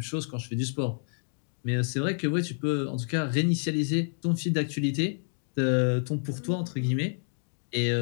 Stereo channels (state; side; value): silent; right; 59 dB below the other